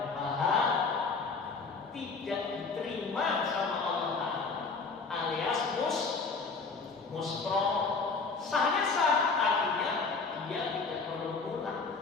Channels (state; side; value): quieter; right; 4.4 dB